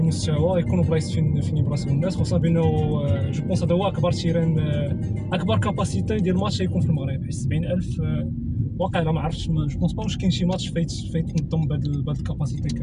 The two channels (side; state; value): both; identical; correlation 1.00